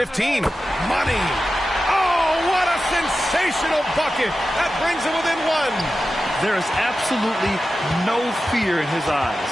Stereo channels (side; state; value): both; normal; correlation 0.93